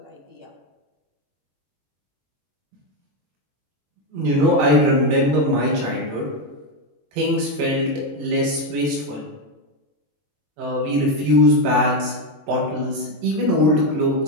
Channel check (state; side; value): late; left; 21 ms